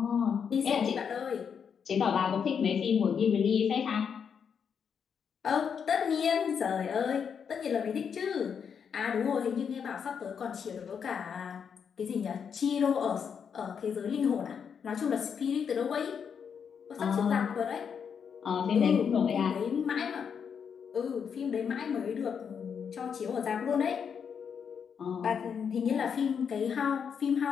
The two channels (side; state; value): right; quieter; 7.0 dB